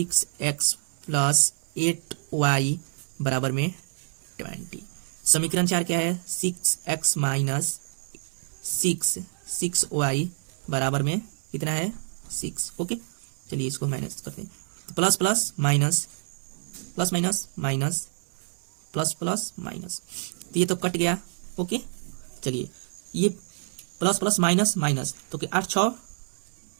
+ 8y बराबर में 20। समीकरण 4 क्या है, 6x माइनस 6y बराबर में कितना है, 6। ओके, चलिए इसको माइनस करते हैं। तो plus plus minus, plus minus minus, plus plus minus, तो ये तो कट गया। ओके, चलिए ये प्लस प्लस माइनस माइनस, तो 8 6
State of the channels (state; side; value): silent; left; 57 dB below the other